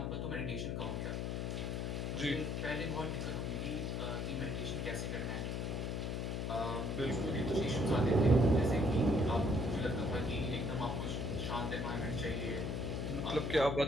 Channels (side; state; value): left; noise; hum, 1 dB below the sound